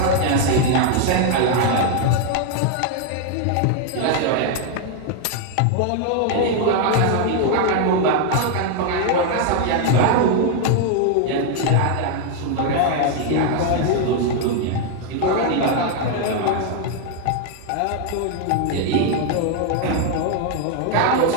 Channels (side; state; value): both; different; correlation 0.00